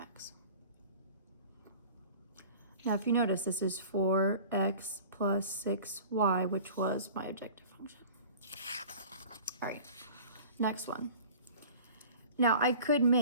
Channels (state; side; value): inverted; both; correlation -0.43